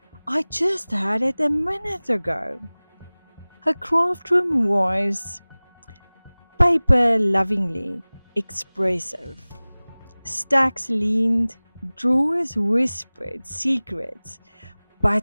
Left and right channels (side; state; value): both; inverted; correlation -1.00